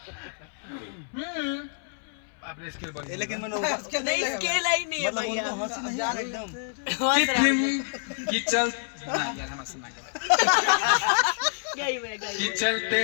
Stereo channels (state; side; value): silent; right; 58 dB below the other